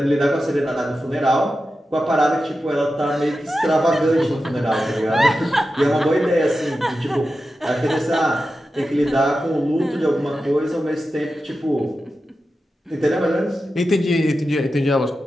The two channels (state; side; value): normal; both; correlation 0.91